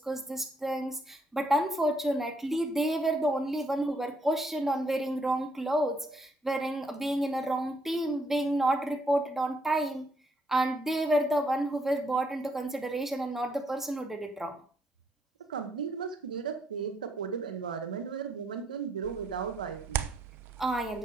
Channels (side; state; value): both; normal; correlation 0.72